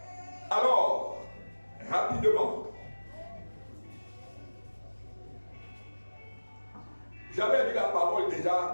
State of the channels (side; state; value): both; inverted; correlation -1.00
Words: Alors, rapidement, j'avais lu la parole